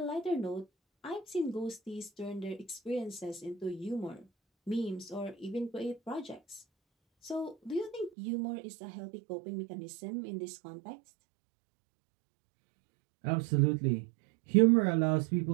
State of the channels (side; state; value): left; drops out; at 8.1 s